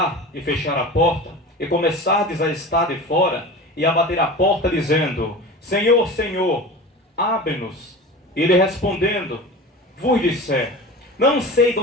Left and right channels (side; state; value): both; normal; correlation 0.33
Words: e fechar a porta, e começardes a estar de fora, e a bater a porta dizendo: Senhor, Senhor, abre-nos. E ele respondendo, vos disser: não sei de